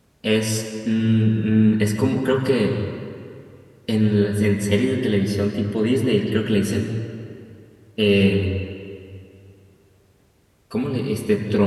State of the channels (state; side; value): identical; both; correlation 1.00